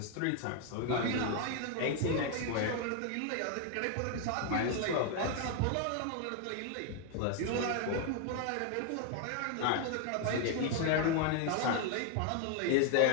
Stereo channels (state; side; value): different; both; correlation 0.00